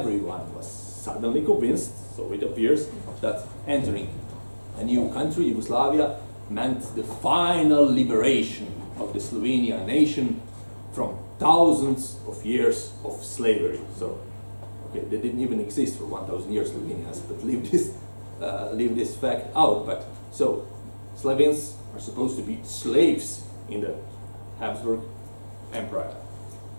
was suddenly convinced, so it appears, that entering a new country, Yugoslavia, meant the final liberation of the Slovenian nation from thousands of years of slavery. So, okay, they didn't even exist for 1,000 years, Slovenians, but leave this fact out. But so, Slovenes are supposed to be slaves in the Habsburg Empire.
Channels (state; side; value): inverted; both; correlation -1.00